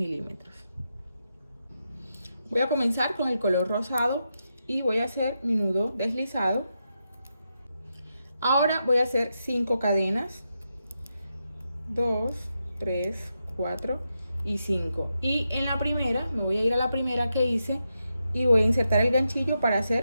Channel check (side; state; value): both; inverted; correlation -0.86